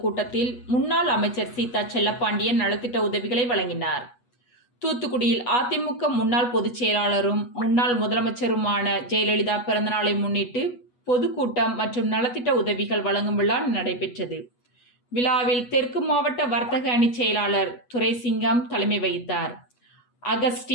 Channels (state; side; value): late; right; 8.2 ms